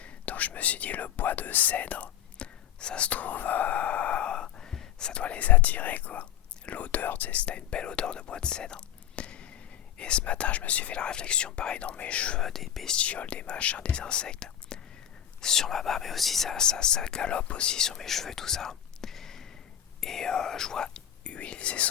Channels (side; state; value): right; quieter; 10.5 dB